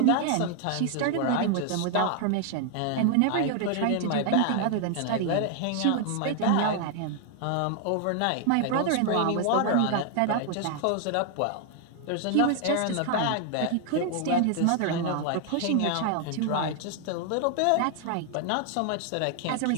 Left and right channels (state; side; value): different; both; correlation 0.00